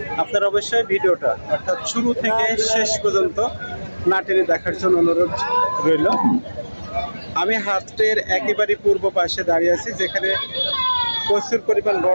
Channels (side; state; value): both; inverted; correlation -1.00